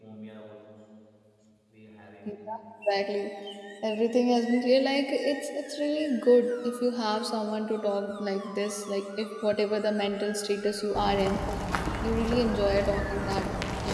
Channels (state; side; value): identical; both; correlation 1.00